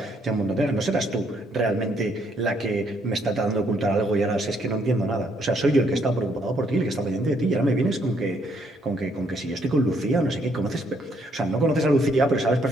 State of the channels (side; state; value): both; normal; correlation 0.70